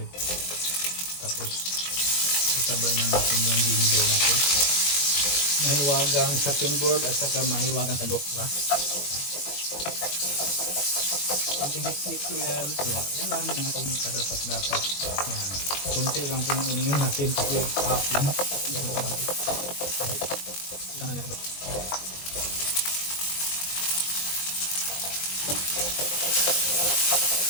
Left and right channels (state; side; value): late; right; 21 ms